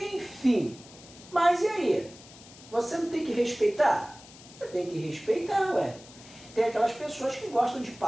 mas e aí? Você não tem que respeitar? Você tem que respeitar, ué. Tem aquelas pessoas que gostam de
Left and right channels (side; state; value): left; noise; hiss, 20 dB below the sound